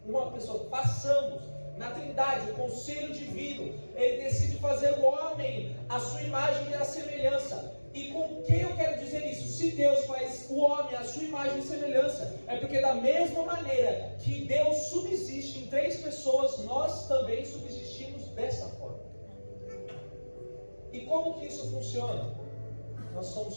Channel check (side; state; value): both; inverted; correlation -1.00